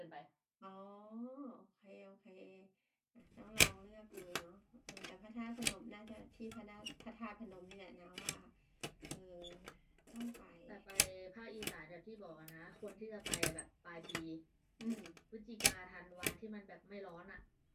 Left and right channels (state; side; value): identical; both; correlation 1.00